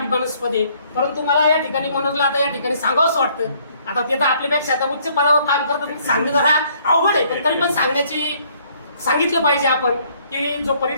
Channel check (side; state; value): both; inverted; correlation -0.63